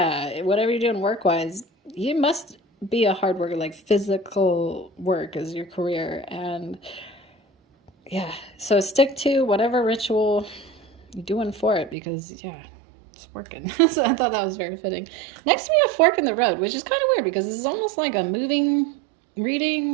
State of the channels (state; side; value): drops out; left; at 12.0 s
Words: whatever you're doing work-wise, you must be a hard worker. Like, physical work is your career, and yeah, so stick to whatever ritual you're doing for it, because yeah, it's working. So I thought that was very fitting. Next we have Fork in the Road, which is kind of weird because this is almost like a moving